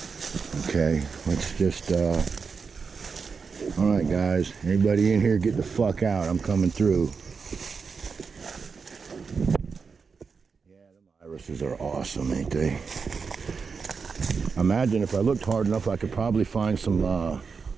Okay, let's just, all right guys, anybody in here get the fuck out, I'm coming through. Yeah, them irises are awesome, ain't they? Imagine if I looked hard enough, I could probably find some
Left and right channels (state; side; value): quieter; left; 5.3 dB